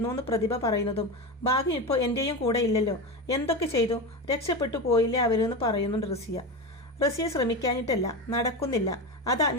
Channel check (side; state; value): both; normal; correlation 0.21